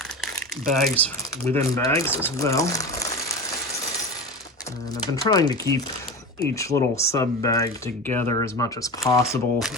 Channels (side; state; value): both; normal; correlation 0.28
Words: bags within bags as well. And I've been trying to keep each little sub bag together as much as possible.